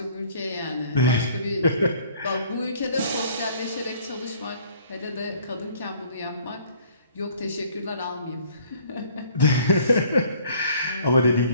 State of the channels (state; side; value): inverted; both; correlation -0.57